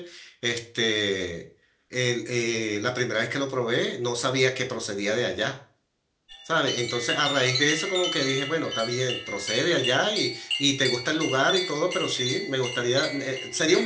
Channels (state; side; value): identical; both; correlation 1.00